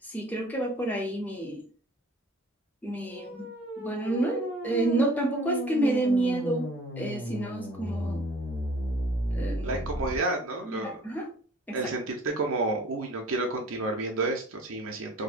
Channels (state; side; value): normal; both; correlation 0.50